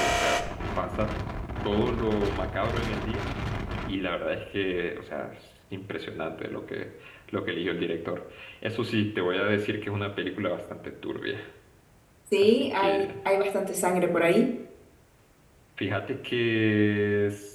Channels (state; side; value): identical; both; correlation 1.00